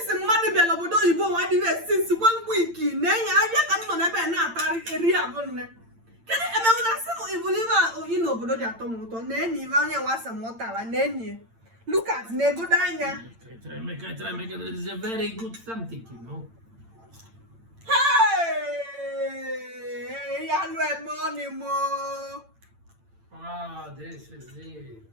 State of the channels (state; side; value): late; left; 8.8 ms